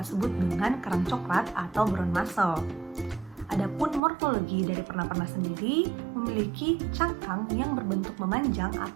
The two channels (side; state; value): left; drops out; at 4.0 s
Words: sebut dengan kerang coklat atau brown mussel. Adapun morfologi dari pernah-pernah sendiri memiliki cangkang yang berbentuk memanjang